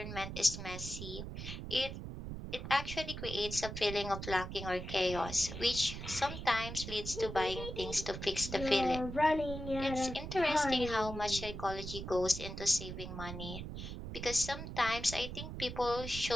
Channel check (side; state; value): right; noise; rumble, 7 dB below the sound